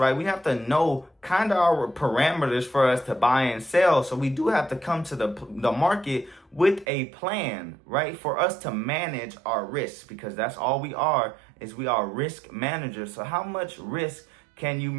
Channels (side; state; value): left; drops out; at 6.9 s